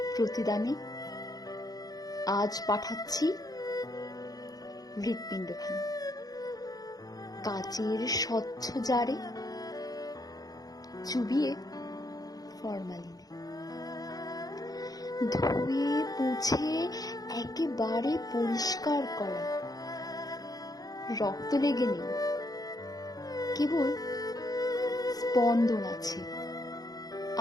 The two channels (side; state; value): right; late; 0.18 ms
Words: প্রতিদানে আজ পাঠাচ্ছি হৃৎপিণ্ডখানা কাচের স্বচ্ছ জারে, চুবিয়ে ফরমালিনে, ধুয়ে মুছে একেবারে পরিষ্কার করা। রক্ত লেগে নেই, কেবল স্পন্দন আছে